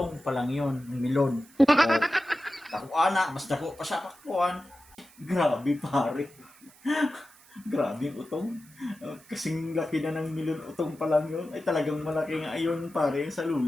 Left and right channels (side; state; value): right; noise; hiss, 26 dB below the sound